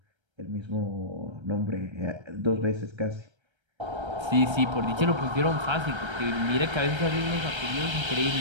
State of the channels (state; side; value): late; left; 1.3 ms